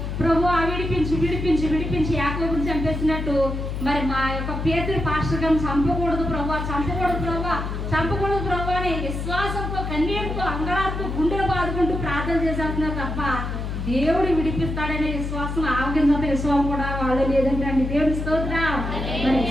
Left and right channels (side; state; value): left; noise; hum, 4 dB below the sound